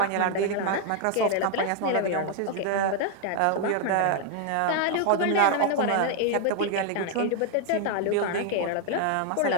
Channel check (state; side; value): different; both; correlation 0.00